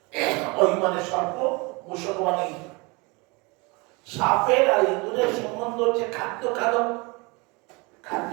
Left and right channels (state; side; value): quieter; left; 27.4 dB